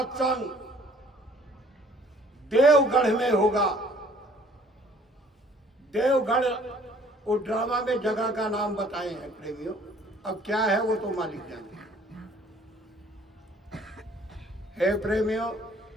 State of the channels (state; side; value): normal; both; correlation 0.56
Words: देवगढ़ में होगा। देवगढ़ उस ड्रामा में जगह का नाम बताए हैं प्रेमियों, अब क्या है वो तो मालिक जाने। हे प्रेमियों,